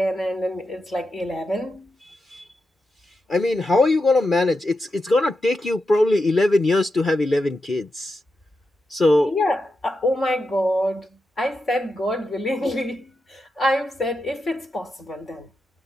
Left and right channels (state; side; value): normal; both; correlation 0.88